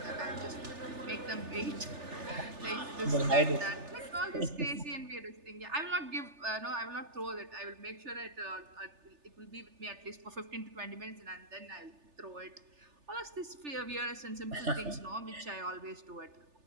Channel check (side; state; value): left; late; 3.4 ms